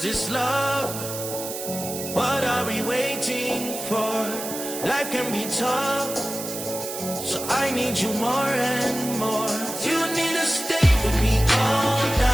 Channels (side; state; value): right; noise; hiss, 8 dB below the sound